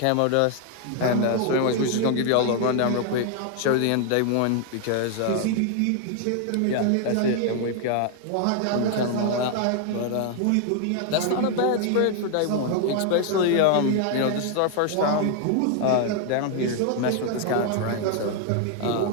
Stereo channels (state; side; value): different; both; correlation 0.00